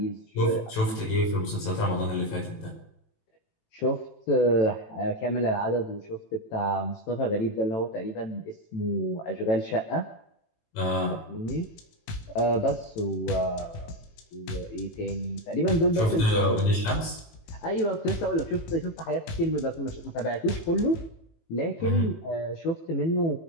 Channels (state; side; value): late; right; 18 ms